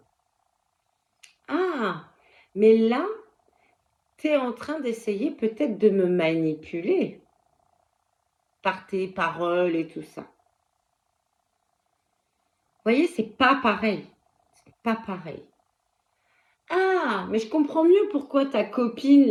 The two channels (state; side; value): identical; both; correlation 1.00